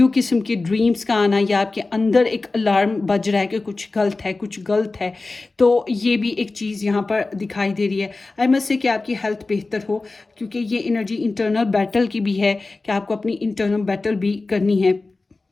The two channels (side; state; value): right; quieter; 3.5 dB